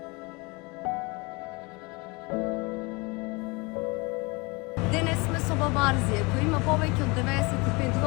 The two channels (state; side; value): quieter; right; 26.9 dB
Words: Денес сме со баба Арзија, која има повеќе од 95